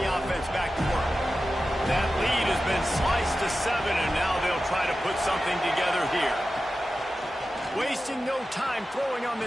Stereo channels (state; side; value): normal; both; correlation 0.93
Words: offense back to work. That lead has been sliced to 7, and now they'll try to put something together here. Wasting no time throwing on